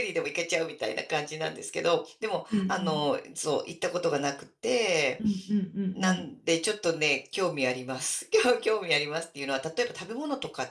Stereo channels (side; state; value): both; identical; correlation 1.00